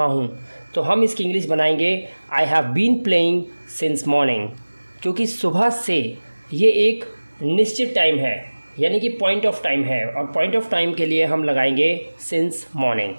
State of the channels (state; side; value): inverted; both; correlation -1.00